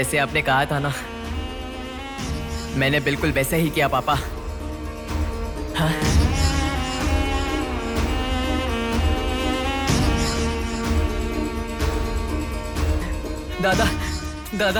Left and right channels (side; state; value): both; identical; correlation 1.00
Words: आपने कहा था ना। मैंने बिल्कुल वैसे ही किया पापा। हाँ? दादा,